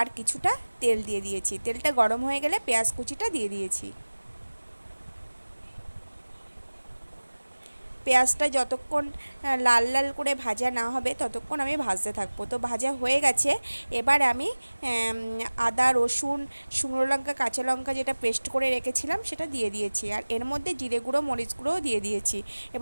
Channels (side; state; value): both; inverted; correlation -1.00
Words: কিছুটা তেল দিয়ে দিয়েছি, তেলটা গরম হয়ে গেলে পেঁয়াজ কুচিটা দিয়ে দিয়েছি। পেঁয়াজটা যতক্ষণ লাল লাল করে ভাজা না হবে ততক্ষণ আমি ভাজতে থাকবো। তো ভাজা হয়ে গেছে। এবার আমি আদা, রসুন, শুকনো লঙ্কা, কাঁচা লঙ্কা যেটা পেস্ট করে রেখেছিলাম সেটা দিয়ে দিয়েছি, আর এর মধ্যে জিরে গুঁড়ো, মরিচ গুঁড়োও দিয়ে দিয়েছি।